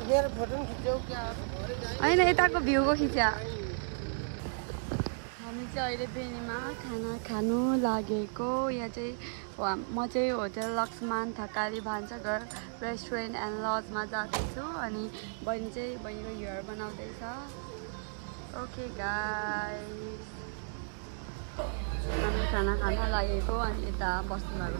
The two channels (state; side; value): silent; left; digital silence